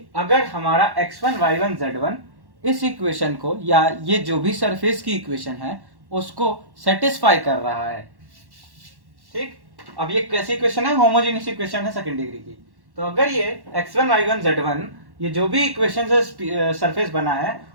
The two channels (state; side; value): late; left; 1.1 ms